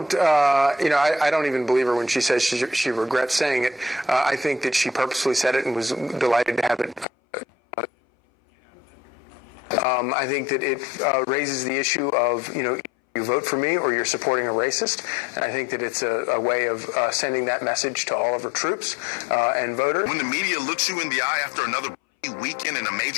don't even believe her when she says she regrets saying it. I think that she purposely said it and was delighted to have it. I think that it raises the issue of, you vote for me or you're supporting a racist. And I think that it's a way of sending that message to all of our troops and voters. When the media looks you in the eye after another weekend in a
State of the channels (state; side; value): drops out; right; at 7.1 s